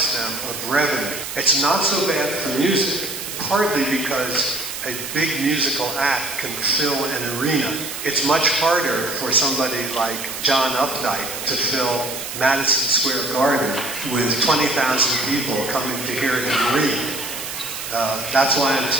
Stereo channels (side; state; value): right; noise; hiss, 7 dB below the sound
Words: them of revenue. It's not so bad for music, partly because a big musical act can fill an arena. It's much harder for somebody like John Updike to fill Madison Square Garden with 20,000 people coming to hear him read. That's why I'm